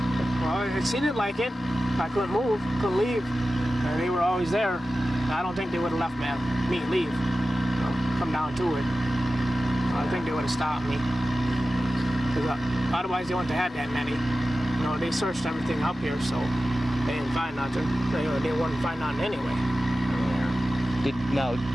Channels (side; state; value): both; normal; correlation 0.94